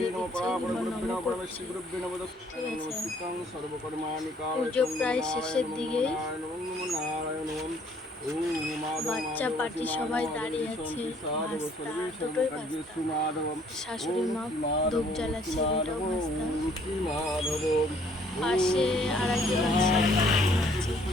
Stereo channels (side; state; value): both; normal; correlation 0.62